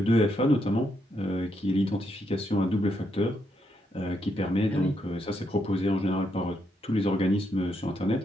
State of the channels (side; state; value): both; normal; correlation 0.79